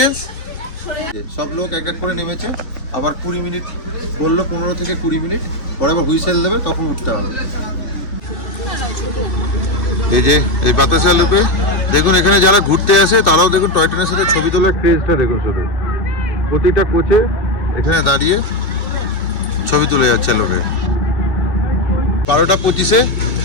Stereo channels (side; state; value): right; late; 2.6 ms